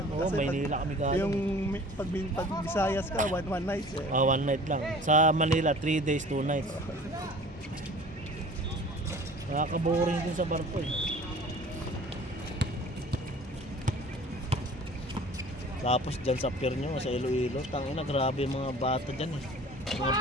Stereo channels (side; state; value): both; normal; correlation 0.46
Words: Oo, Kasi Maynila kami galing. Yung pag Visayas ka, one night eh. 1 night lang. Sa Manila, 3 days, 2 nights. Nakaka-boring din sa barko eh. Tapos dyan sa pier nyo, sa Iloilo, tangina, grabe yung mga bata dyan eh. Mga